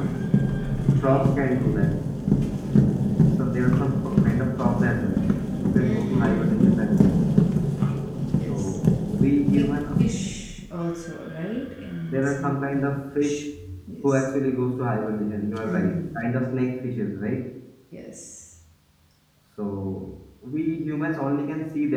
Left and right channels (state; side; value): identical; both; correlation 1.00